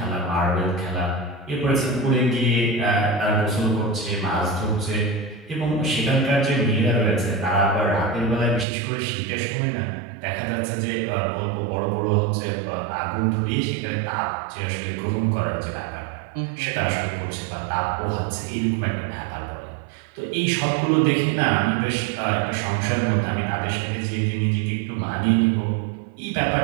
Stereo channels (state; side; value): drops out; left; at 8.7 s